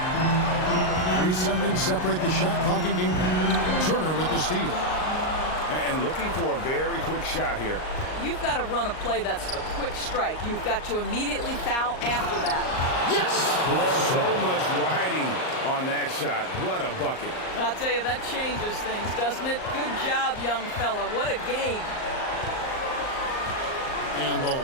3 seconds separate the shot clock in game. Turner with the steal. And looking for a very quick shot here. you've got to run a play that's a quick strike. You've got to immediately foul after that. Yes! So much riding on that shot. What a bucket. I'll tell you, that changes things, doesn't it? Good job, young fella. What a game. And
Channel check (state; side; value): late; right; 38 ms